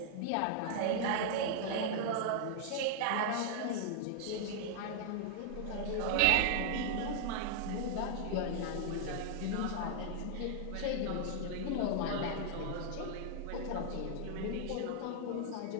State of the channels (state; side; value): different; both; correlation 0.00